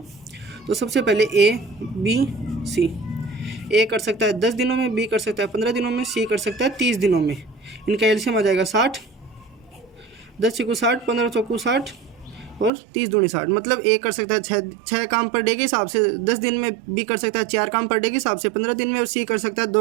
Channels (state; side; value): drops out; left; at 12.7 s